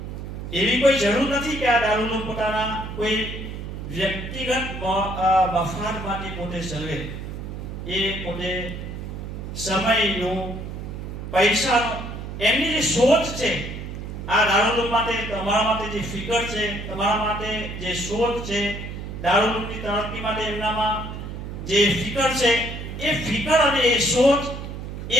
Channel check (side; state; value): right; noise; hum, 8 dB below the sound